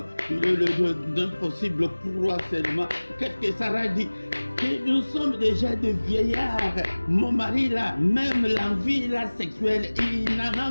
Il est le Dieu d'impossible croix seulement. Qu'est-ce que Sarah dit? Que nous sommes déjà des vieillards. Mon mari là, même l'envie là sexuelle, il n'en a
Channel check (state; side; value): inverted; both; correlation -1.00